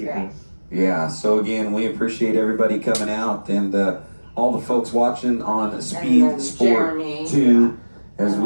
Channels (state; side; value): inverted; both; correlation -1.00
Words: Yeah, so again, we appreciate everybody coming out and all the folks watching on Speed Sport 2, as